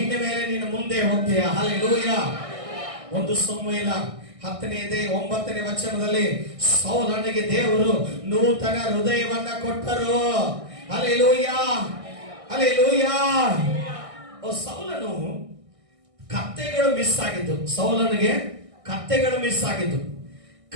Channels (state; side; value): late; left; 1.6 ms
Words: ಮೇಲೆ ನೀನು ಮುಂದೆ ಹೋಗ್ತೀಯ. ಹಲ್ಲೆಲೂಯಾ. ಒಂದು ಸಮುವೇಲ 10:9 ವಚನದಲ್ಲಿ ಸೌಲನಿಗೆ ದೇವರು ನೂತನ ಹೃದಯವನ್ನ ಕೊಟ್ಟರು. Hallelujah, hallelujah. ಸೌಲನು ಕತ್ತೆಗಳು ಮಿಸ್ ಆಗಿದ್ದು, ಸೌಲನಿಗೆ ಕತ್ತೆಗಳು ಮಿಸ್ ಆಗಿದ್ದು,